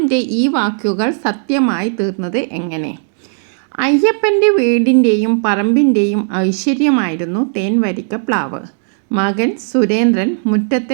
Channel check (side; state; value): left; silent; digital silence